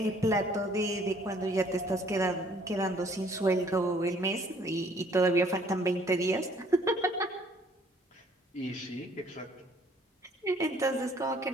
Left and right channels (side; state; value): both; normal; correlation 0.60